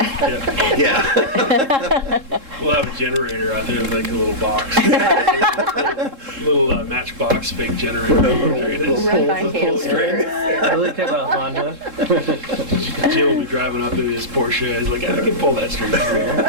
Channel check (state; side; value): late; left; 3.7 ms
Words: Yeah. We'll have a generator out there, like a little box. little matchbox fake generator. There it is. Run by Pull string. I really think about Honda. Jim will be driving up in his Porsche. He's like, I can pull that string.